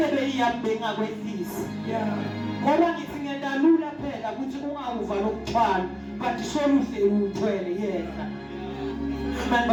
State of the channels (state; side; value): identical; both; correlation 1.00